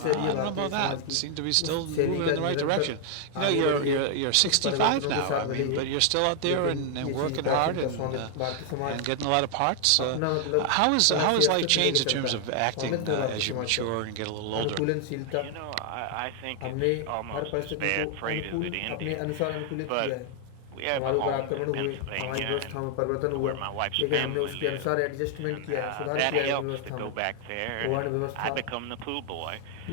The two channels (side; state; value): both; different; correlation 0.00